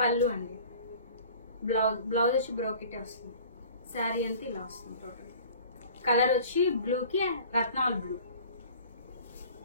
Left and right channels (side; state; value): both; inverted; correlation -0.46